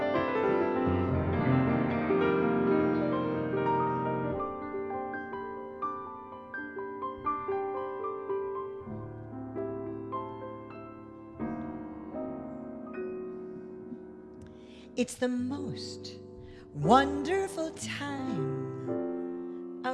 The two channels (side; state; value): both; identical; correlation 1.00